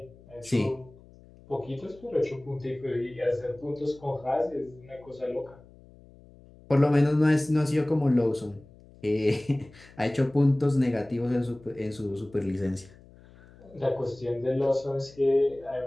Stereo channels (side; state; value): left; noise; hum, 24 dB below the sound